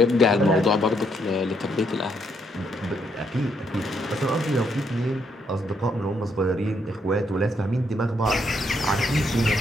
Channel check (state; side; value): normal; both; correlation 0.74